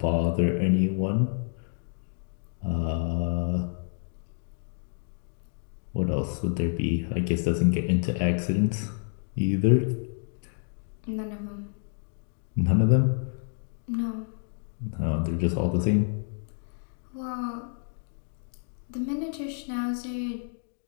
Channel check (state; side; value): silent; right; 59 dB below the other